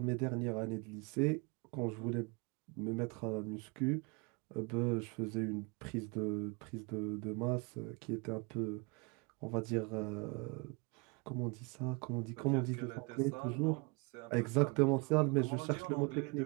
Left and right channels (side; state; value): left; quieter; 30.2 dB